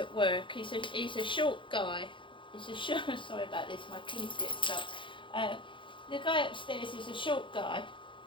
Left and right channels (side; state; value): right; late; 0.24 ms